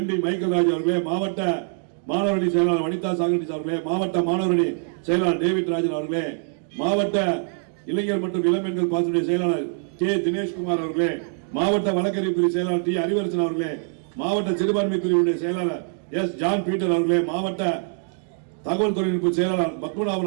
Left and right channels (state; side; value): silent; left; 63 dB below the other